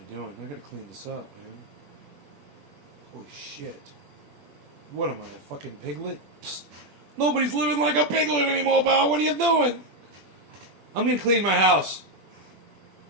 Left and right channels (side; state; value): left; late; 21 ms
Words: doing? I gotta clean this up, man. Holy shit. What am I, a fucking piglet? Psst. Nobody's living like a piglet anymore, pal. What are you doing? I'm gonna clean my house.